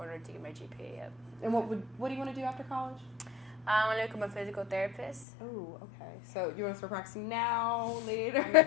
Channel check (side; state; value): right; drops out; at 5.2 s